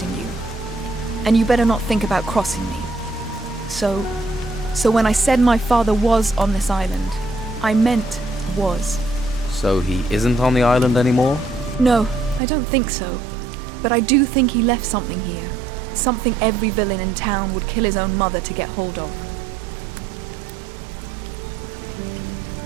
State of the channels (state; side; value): drops out; left; at 12.4 s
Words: you. And you better not think about crossing me. So when I said my father was on this island, I meant was. So he isn't on the island anymore? No, I don't think so. But I do think he left something here. Something every villain in town would kill his own mother to get hold of.